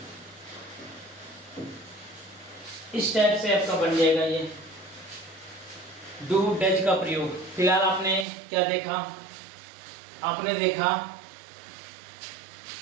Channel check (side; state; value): left; drops out; at 8.2 s